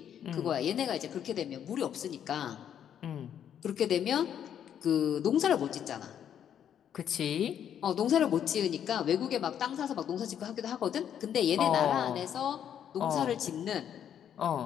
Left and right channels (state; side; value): quieter; right; 9.3 dB